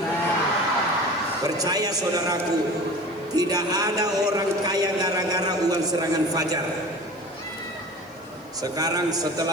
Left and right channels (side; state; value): left; noise; hiss, 29 dB below the sound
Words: Percaya saudaraku, tidak ada orang kaya gara-gara uang serangan fajar. Sekarang